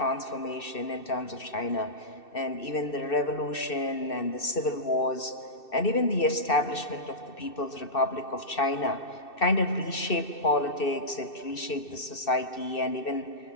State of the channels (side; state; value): right; late; 2.6 ms